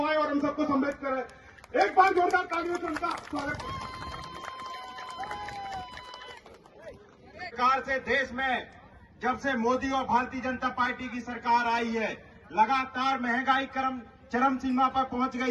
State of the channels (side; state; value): both; identical; correlation 1.00